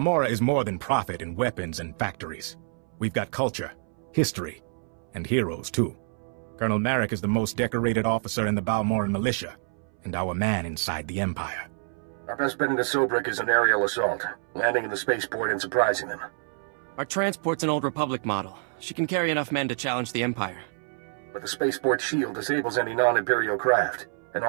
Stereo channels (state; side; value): silent; left; 60 dB below the other